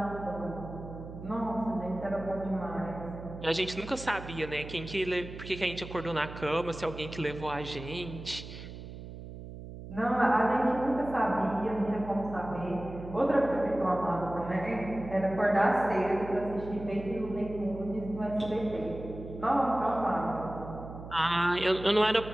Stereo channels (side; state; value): right; noise; hum, 12 dB below the sound